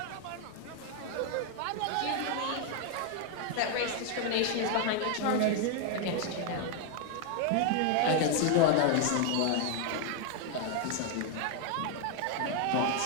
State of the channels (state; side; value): different; both; correlation 0.00